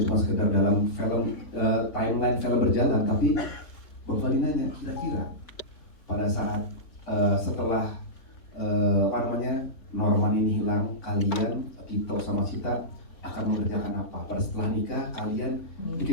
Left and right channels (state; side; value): late; right; 3.9 ms